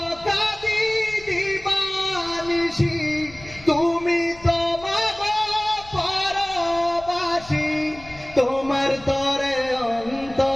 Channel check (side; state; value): left; noise; rumble, 20 dB below the sound